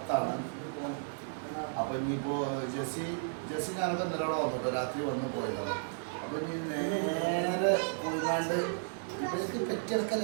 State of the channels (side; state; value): left; silent; digital silence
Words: അപ്പൊ ഇനിയിപ്പോ ജെസ്സി ഞാനൊക്കെ എന്തിനാണോ വന്നിട്ടോ രാത്രി വന്ന് പോയതാണ്. അപ്പൊ ഇനി നേരെ പോയിക്കാണ്ട് ഇവർക്ക്